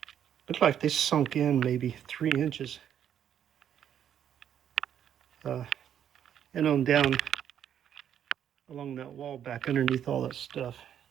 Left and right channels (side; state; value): left; quieter; 9.5 dB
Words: like they sunk in maybe 3 inches. And on down along that wall back underneath all that stuff.